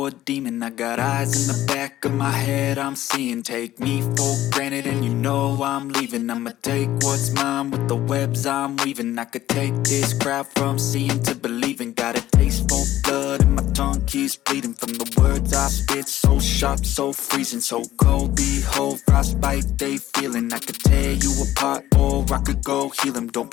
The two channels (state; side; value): quieter; right; 13.9 dB